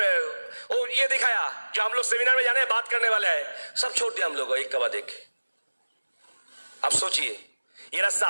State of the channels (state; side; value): inverted; both; correlation -1.00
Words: और ये दिखाया, जो हम लोग सेमिनार में जाने बात करने वाले हैं, सब छोड़ दिया हम लोग एक के बाद एक। आप सोचिए, ये रास्ता